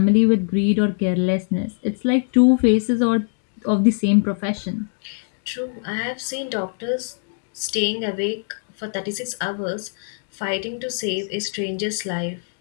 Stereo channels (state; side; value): silent; right; 64 dB below the other